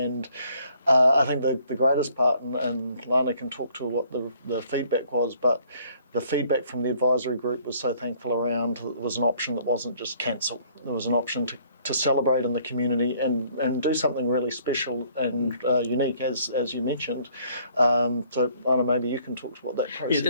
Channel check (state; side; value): inverted; both; correlation -0.62